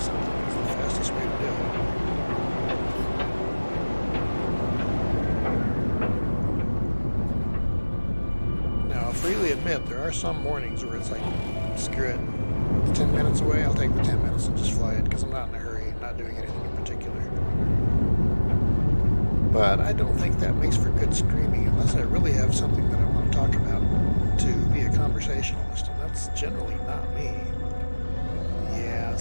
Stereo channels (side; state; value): both; inverted; correlation -1.00